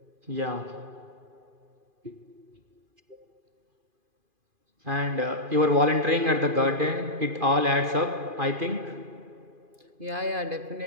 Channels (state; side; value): late; left; 2.5 ms